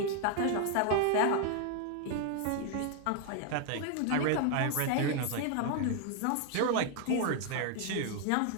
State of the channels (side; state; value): both; different; correlation 0.00